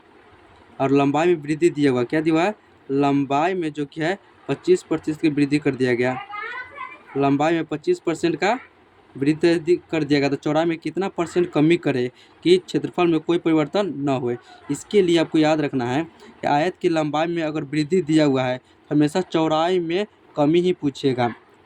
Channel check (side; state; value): both; identical; correlation 1.00